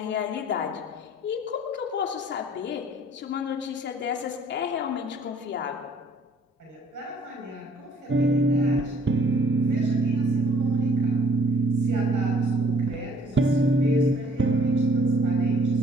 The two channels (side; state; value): both; normal; correlation 0.58